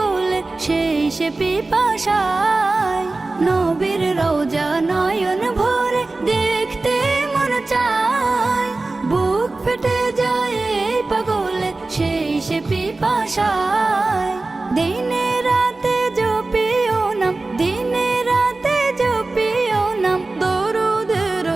সেই সে পিপাসায়। নবীর রওজা নয়ন ভরে দেখতে মন চায়, বুক ফেটে যায় এই পাগলে সেই সে পিপাসায়। দিনে রাতে জপিও নাম, দিনে রাতে জপিও নাম দরুদের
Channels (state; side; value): quieter; left; 3.3 dB